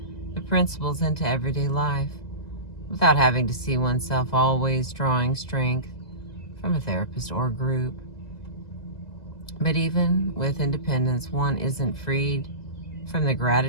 the principles into everyday life without having to see oneself always drawing strength from a therapist or group. But even with independence, one isn't freed from the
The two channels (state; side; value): late; right; 2.0 ms